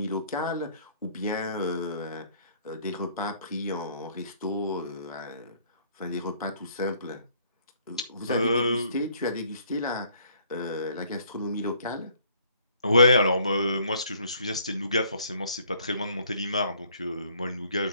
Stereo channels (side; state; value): both; inverted; correlation -0.62